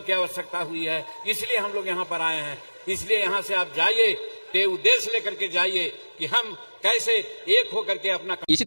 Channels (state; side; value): inverted; both; correlation -1.00